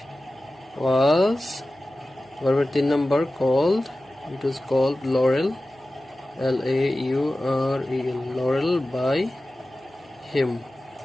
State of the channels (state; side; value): noise; right; hum, 29 dB below the sound